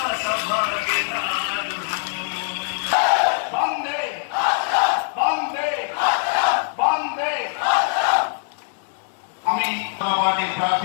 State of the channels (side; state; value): right; silent; digital silence